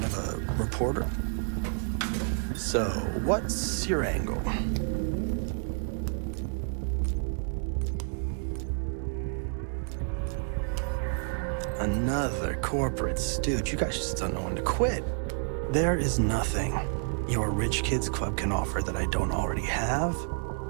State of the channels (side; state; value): left; silent; 58 dB below the other